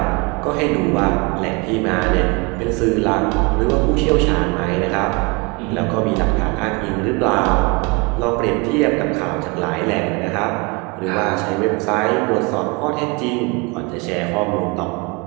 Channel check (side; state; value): left; quieter; 28.4 dB